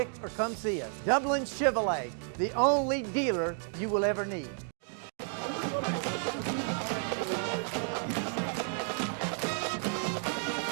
or come see us. Dublin Chevrolet, the only dealer you will ever need.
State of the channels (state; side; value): silent; left; 56 dB below the other